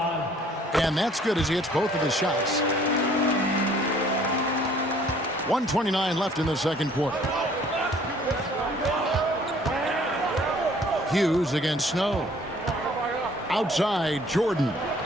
And that's good as he hits both of his shots. 1:29 left in the 2nd quarter. Hughes against Snow. Outside, Jordan.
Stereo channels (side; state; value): both; normal; correlation 0.57